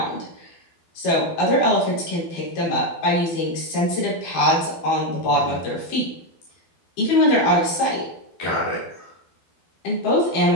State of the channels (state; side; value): late; right; 12 ms